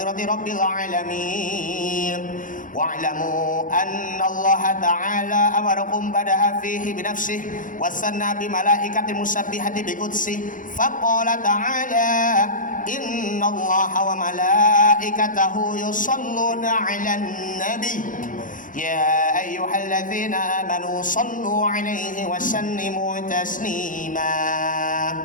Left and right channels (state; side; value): late; right; 0.38 ms